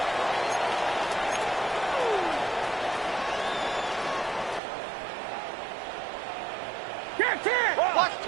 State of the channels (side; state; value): left; drops out; at 4.6 s